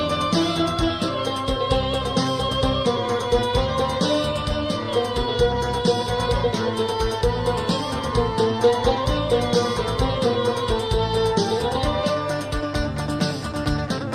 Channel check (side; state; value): both; identical; correlation 1.00